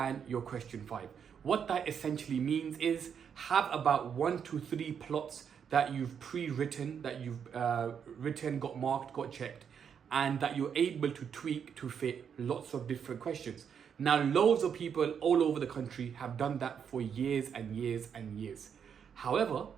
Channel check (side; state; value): left; quieter; 7.5 dB